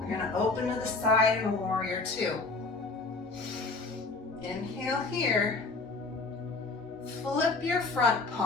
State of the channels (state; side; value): quieter; right; 3.7 dB